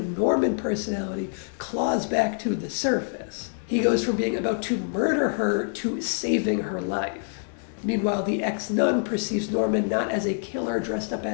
Norman personality claws back to the surface. He goes from being about to murder her to saving her life. Meanwhile, the ex-nun perceives Norman not as a killer dressed up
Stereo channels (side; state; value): right; silent; digital silence